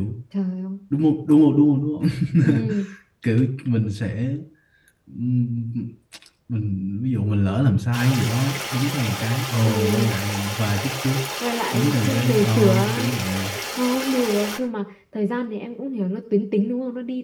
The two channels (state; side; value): identical; both; correlation 1.00